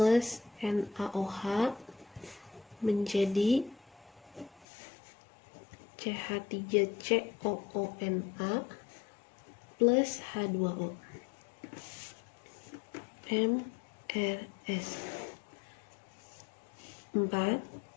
NaOH menjadi CH3COONa plus H2O. MRS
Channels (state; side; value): drops out; right; at 4.7 s